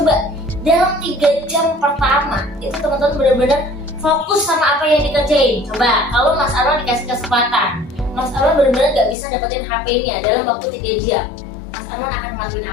dalam 3 jam pertama itu teman-teman benar-benar fokus sama apa yang dikerjain. Coba kalau Mas Arwan dikasih kesempatan, Mas Arwan benar-benar nggak bisa dapetin HP-nya dalam waktu 3 jam. Mas Arwan akan ngelakuin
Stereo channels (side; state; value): right; drops out; at 9.2 s